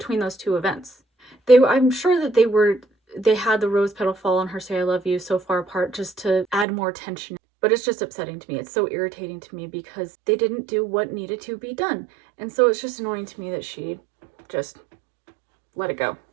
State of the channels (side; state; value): left; drops out; at 6.7 s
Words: those two events. I'm sure that they had the rose petal fall and her say, "I love you" so far apart just to add more tension. But it's just upsetting to me. It's so irritating to me because they didn't do what needed to be done. And so it's just annoying to me that she just let it go.